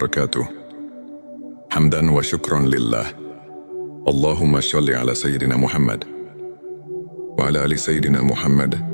Hamdan wa syukran lillah. Allahumma sholli ala Sayyidina Muhammad wa ala ali Sayyidina Muhammad.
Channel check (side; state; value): both; inverted; correlation -1.00